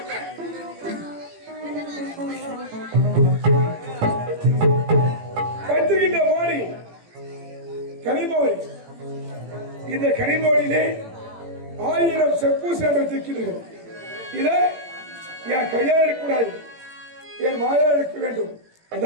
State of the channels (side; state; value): left; late; 18 ms